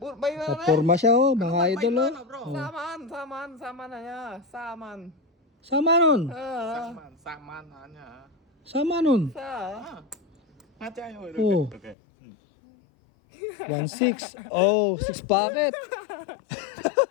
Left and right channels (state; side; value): drops out; right; at 12.0 s